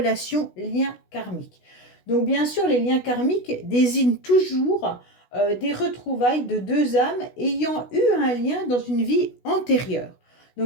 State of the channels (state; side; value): late; right; 16 ms